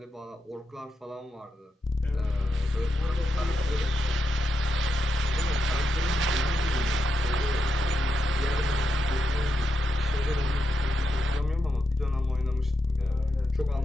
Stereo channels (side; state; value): both; normal; correlation 0.85